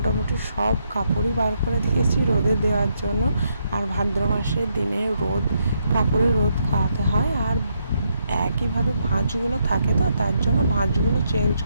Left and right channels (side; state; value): both; inverted; correlation -0.78